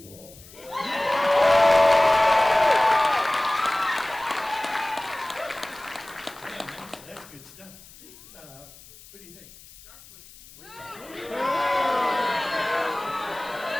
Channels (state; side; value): noise; left; hiss, 21 dB below the sound